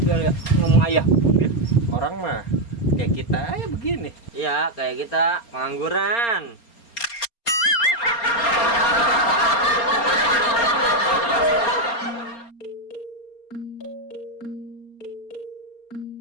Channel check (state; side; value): late; right; 4.3 ms